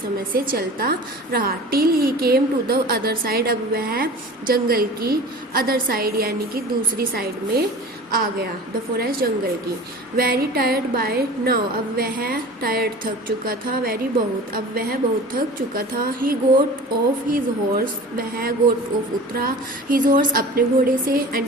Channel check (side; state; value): both; normal; correlation 0.39